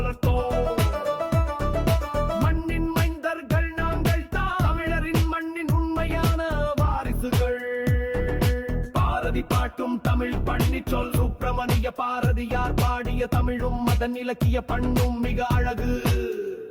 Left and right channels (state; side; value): identical; both; correlation 1.00